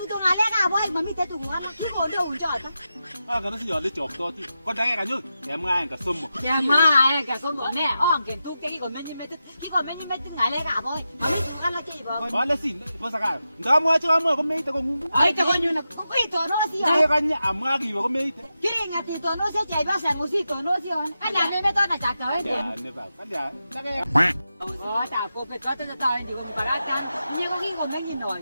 to ngale ga boy mami te to ngala ki ko do unja ta 아, 그래서 열리 좁도 거 다게 가지고 대망한 거 선모. ya ma ga so mo ne on ken tu ke ki ko meni mete ngale ga boy mami kan la ki ba 말레시 뭐 사갈. 나 뭐야 저 뭐, 그 메이트 거 무. ai to ko nyu na ko to no si ya 내가 니 아마기 거 메이트. kiri ngati to no se jai ba sa ngusi to no si on ana me me to na cha ka we 야, 내 봐. 근데 내가 ta ko pe to ta ta ni ko ba ra kan ni ko ki ko me ni noi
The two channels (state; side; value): inverted; both; correlation -0.90